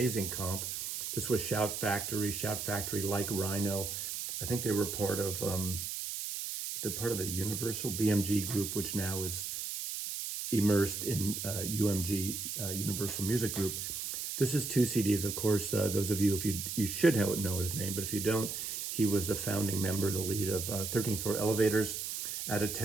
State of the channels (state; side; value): noise; right; hiss, 4 dB below the sound